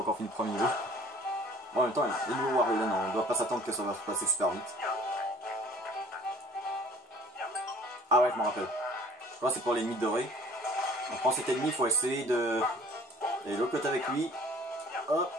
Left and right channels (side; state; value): both; normal; correlation 0.52